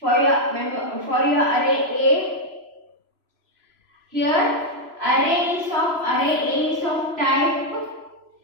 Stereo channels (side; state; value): left; late; 3.0 ms